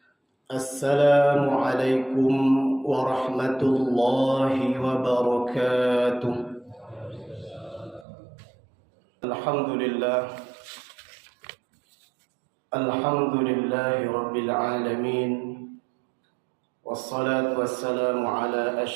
السلام عليكم ورحمة الله وبركاته. الحمد لله رب العالمين، والصلاة والسلام على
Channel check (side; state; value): left; drops out; at 8.1 s